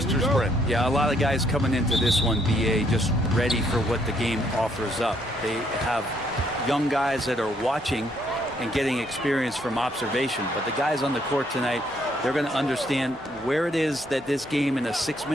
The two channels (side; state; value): both; normal; correlation 0.70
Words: Brent. Yeah, a lot of guys coming into this one, BA, just ready for what the game offers up. They have young guys that are watching and getting experience from observation. But the guys on the court tonight, they're going to understand where it is that this game in a